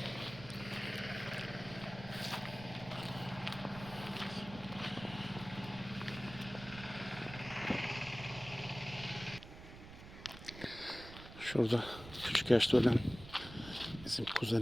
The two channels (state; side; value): noise; right; rumble, 14 dB below the sound